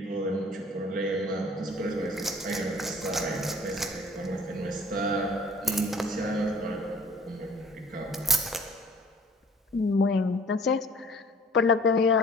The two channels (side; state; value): both; normal; correlation 0.49